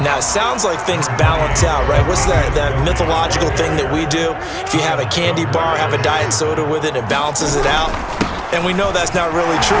Now, it sounds like things balance out, right? What's that mythological thing that we do? If you have a candy bar, have a diet soda with it, it balances it out. And we know that's not really true,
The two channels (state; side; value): identical; both; correlation 1.00